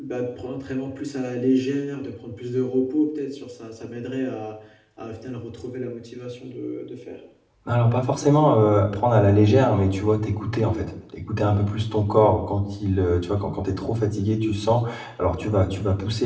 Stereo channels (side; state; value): both; identical; correlation 1.00